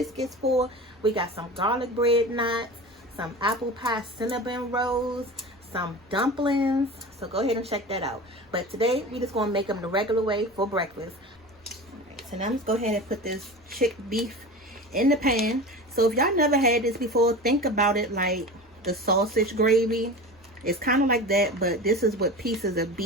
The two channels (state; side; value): normal; both; correlation 0.32